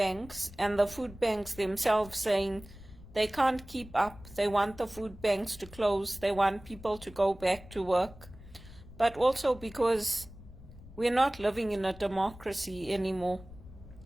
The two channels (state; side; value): noise; left; rumble, 18 dB below the sound